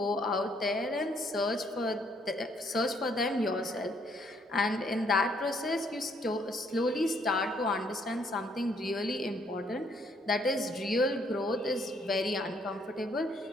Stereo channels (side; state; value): both; normal; correlation 0.68